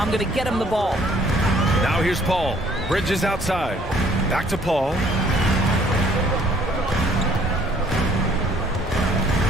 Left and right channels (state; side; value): normal; both; correlation 0.60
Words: going to get him the ball. Now here's Paul. Bridges outside. Back to Paul.